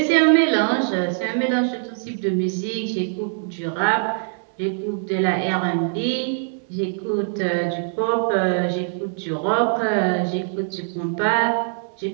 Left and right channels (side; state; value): left; silent; digital silence